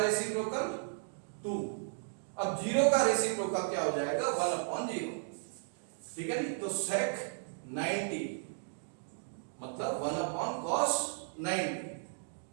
2। अब 0 का रेसिप्रोकल क्या हो जाएगा, 1/0। ठीक है नहीं, तो sec 90 मतलब 1/cos 90।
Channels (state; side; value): silent; left; digital silence